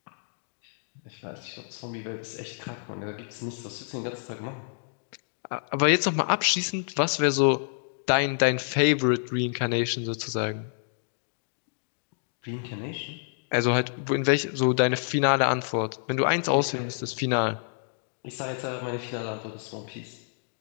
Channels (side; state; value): right; silent; digital silence